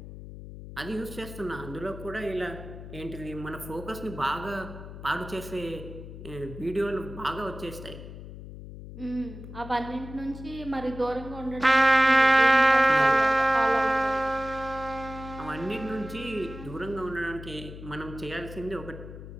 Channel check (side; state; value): left; noise; hum, 13 dB below the sound